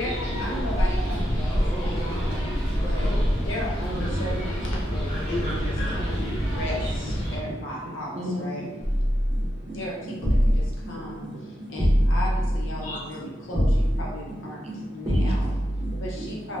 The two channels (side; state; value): both; normal; correlation 0.88